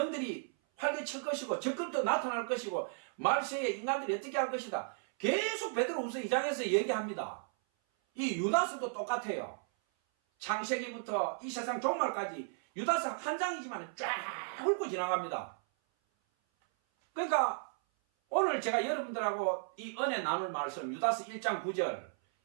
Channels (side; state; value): left; silent; 55 dB below the other